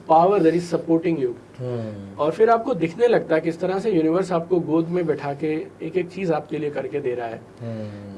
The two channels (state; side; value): identical; both; correlation 1.00